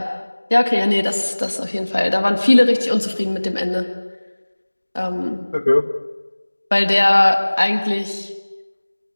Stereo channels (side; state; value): both; inverted; correlation -1.00